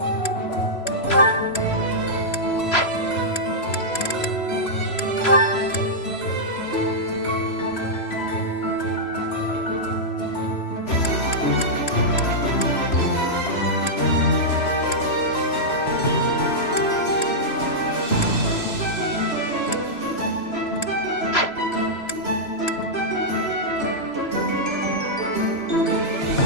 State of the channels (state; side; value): late; right; 3.0 ms